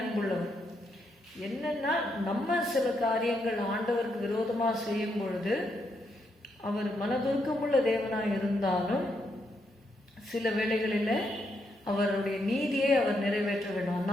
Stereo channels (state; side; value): normal; both; correlation 0.79